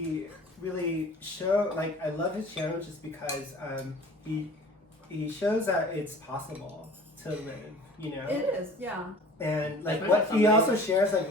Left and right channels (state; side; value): normal; both; correlation 0.45